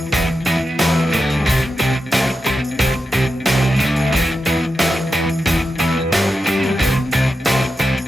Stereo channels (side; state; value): both; normal; correlation 0.89